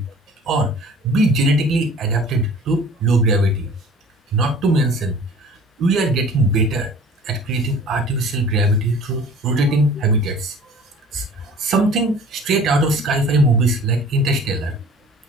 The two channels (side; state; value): both; normal; correlation 0.46